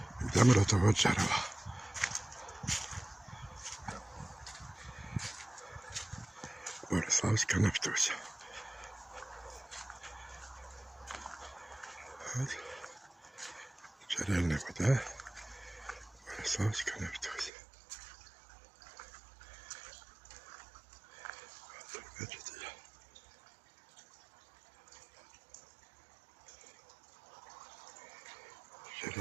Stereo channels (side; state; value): left; drops out; at 17.5 s